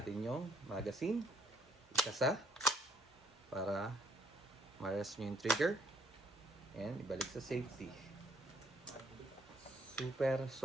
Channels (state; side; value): normal; both; correlation 0.65